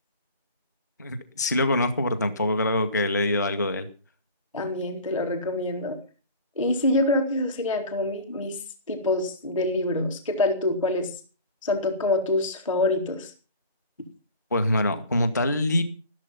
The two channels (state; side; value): inverted; both; correlation -0.39